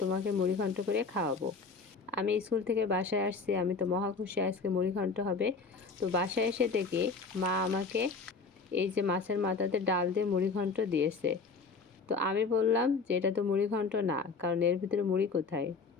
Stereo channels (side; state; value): right; quieter; 4.5 dB